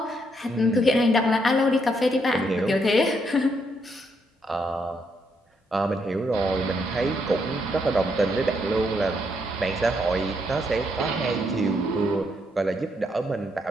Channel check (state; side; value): normal; both; correlation 0.75